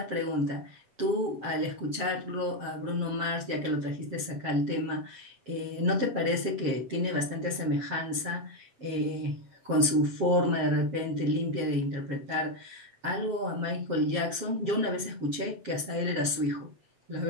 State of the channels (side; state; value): left; late; 7.5 ms